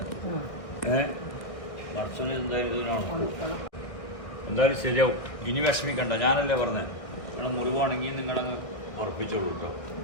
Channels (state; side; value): late; right; 1.6 ms